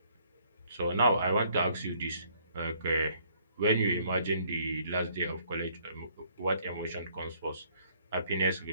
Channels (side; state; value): both; inverted; correlation -0.64